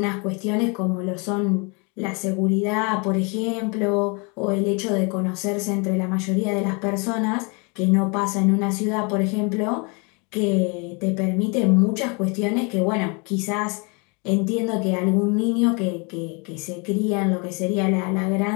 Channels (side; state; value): right; quieter; 32.0 dB